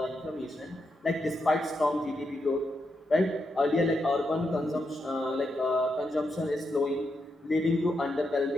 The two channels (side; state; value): both; normal; correlation 0.83